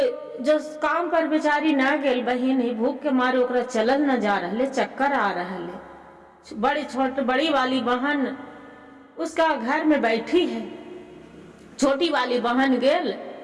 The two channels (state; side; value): identical; both; correlation 1.00